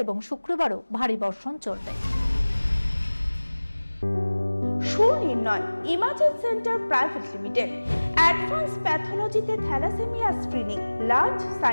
এবং শুক্রবারও ভারী বর্ষণ চলবে। Sunirnoy imaging centre private limited advance প্যাথোলজিতে thalassaemia screening, large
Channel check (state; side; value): inverted; both; correlation -1.00